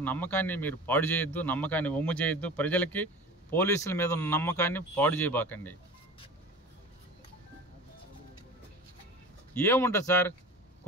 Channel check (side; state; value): both; normal; correlation 0.37